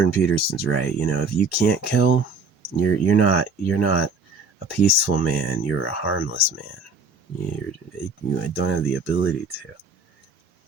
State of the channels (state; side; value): quieter; left; 3.6 dB